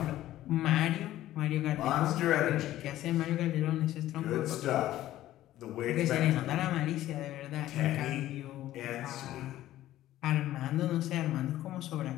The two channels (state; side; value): quieter; right; 14.2 dB